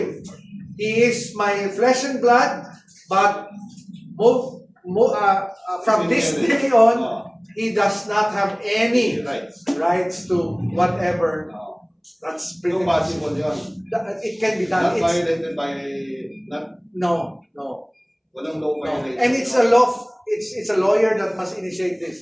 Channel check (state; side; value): identical; both; correlation 1.00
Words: He is my flesh and blood, but from this day on, Oh, he does not have any right. rights to whatever. Oh. That's pretty No much. possible yun. It can be done. Not It's, violated by, not, no. walang law violation. And it's a law. It's a lawyer that must initiate